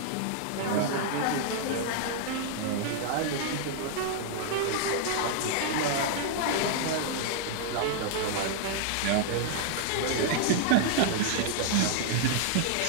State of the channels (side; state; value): both; different; correlation -0.01